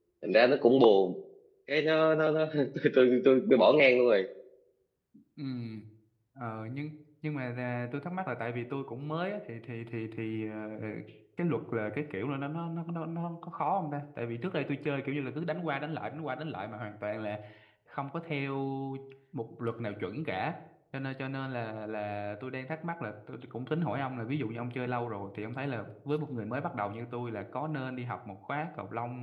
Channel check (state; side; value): identical; both; correlation 1.00